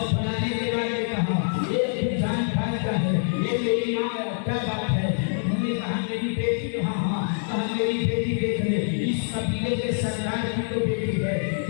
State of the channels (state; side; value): silent; right; 62 dB below the other